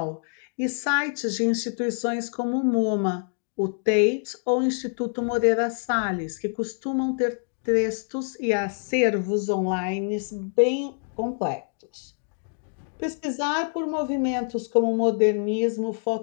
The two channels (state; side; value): silent; right; 61 dB below the other